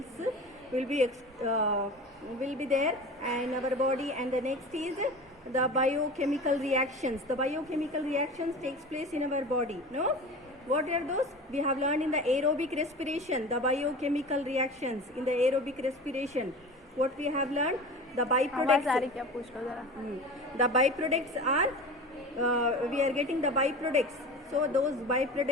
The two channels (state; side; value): normal; both; correlation 0.34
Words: will be there in our body. And the next is the biochemical reactions. The biochemical reactions takes place in our body. No, what are those? We have learned in the aerobic respiration, the biochemical reactions in the aerobic respiration. What we have learned, the byproducts. The byproducts are we are getting the byproducts. So those